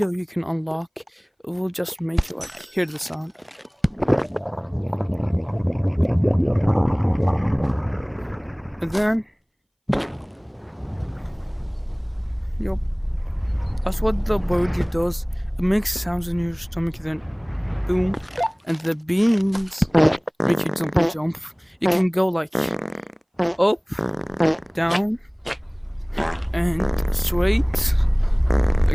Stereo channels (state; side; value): identical; both; correlation 1.00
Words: you can unlock. It will just make you like hear the sound. And then, yup, that's what the burrito does. It makes sounds in your stomach, then boom, and the beans make you jump. You can go like up, down, and straight.